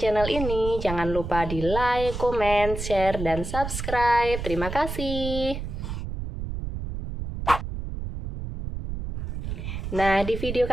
ini, jangan lupa di like, komen, share, dan subscribe. Terima kasih. Nah, di video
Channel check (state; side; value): noise; right; rumble, 6 dB below the sound